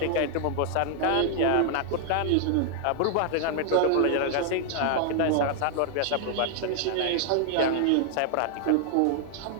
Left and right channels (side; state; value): both; different; correlation 0.00